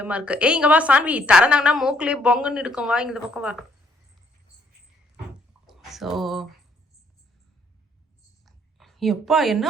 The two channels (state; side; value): normal; both; correlation 0.67